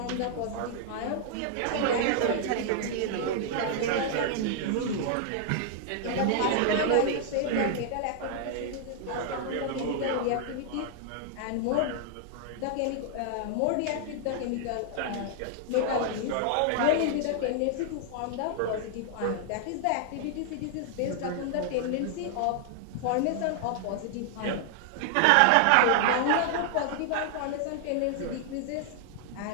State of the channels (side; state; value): both; different; correlation -0.01